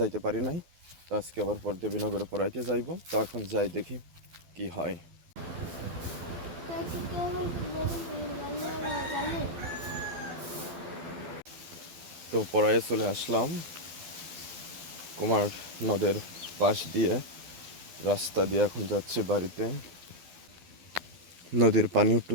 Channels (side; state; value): left; late; 12 ms